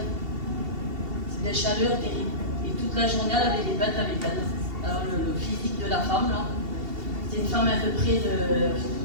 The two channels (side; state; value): left; late; 2.7 ms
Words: C'est des chaleurs terribles. Et toute la journée, elle avait les bêtes avec elle. Alors, le physique de la femme, là, c'est une femme à peu près de